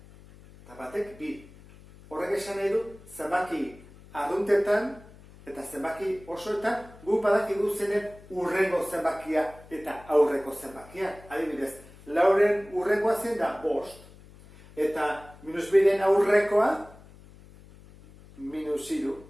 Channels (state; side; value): noise; left; hum, 22 dB below the sound